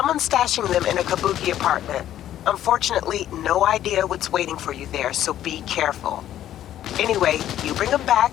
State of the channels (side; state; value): right; quieter; 11.9 dB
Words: stashing them in a Kabuki apartment. Unfortunately, no idea what's waiting for you there, so be careful. Anyway, you bring them back,